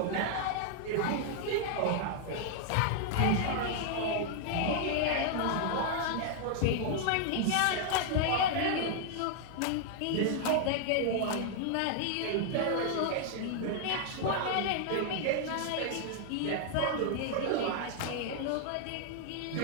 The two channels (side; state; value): both; different; correlation 0.00